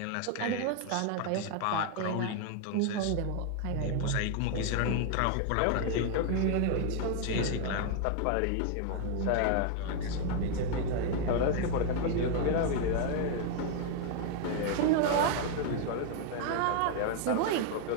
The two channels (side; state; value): both; different; correlation 0.00